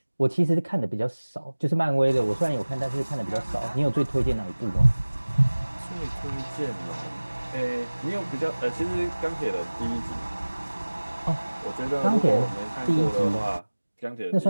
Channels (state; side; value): inverted; both; correlation -1.00